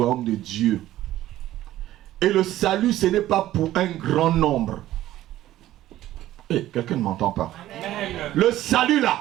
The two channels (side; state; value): left; quieter; 14.2 dB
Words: de Dieu. Et le salut, ce n'est pas pour un grand nombre. Quelqu'un ne m'entend pas. Amen. Le salut